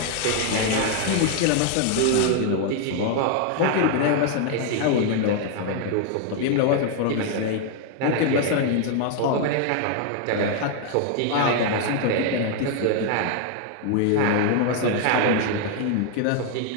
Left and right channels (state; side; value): different; both; correlation 0.00